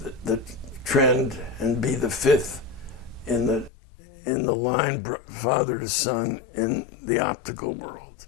trend and be the 5th in the line, father to son, in the optical world.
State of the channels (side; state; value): right; drops out; at 3.7 s